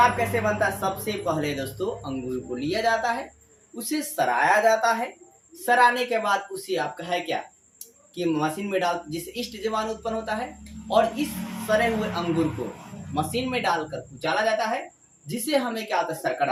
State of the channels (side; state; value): both; identical; correlation 1.00